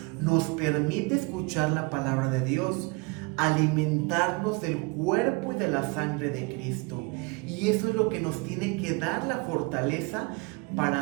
nos permite escuchar la palabra de Dios, alimentarnos del cuerpo y de la sangre de Cristo. Y eso es lo que nos tiene que dar la fortaleza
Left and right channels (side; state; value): left; quieter; 28.4 dB